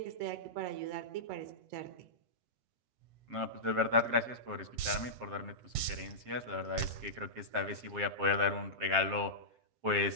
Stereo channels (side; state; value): left; late; 7.5 ms